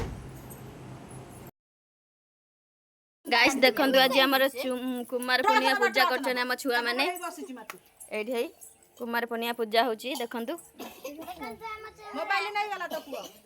गाइस देखु आज आम कुमार पूर्णिमा पूजा कर छुआ मैंने ये कुमार पूर्णिमा पूजा होची देखु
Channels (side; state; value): both; identical; correlation 1.00